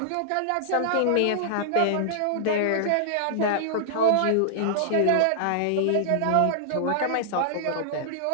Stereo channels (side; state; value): both; different; correlation -0.01